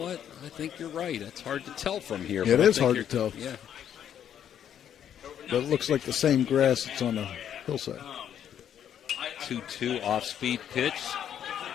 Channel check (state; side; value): quieter; right; 9.6 dB